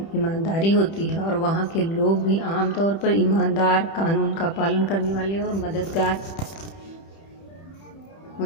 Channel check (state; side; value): late; right; 30 ms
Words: होती है और वहाँ के लोग भी आमतौर पर ईमानदार, कानून का पालन करने वाले और मददगार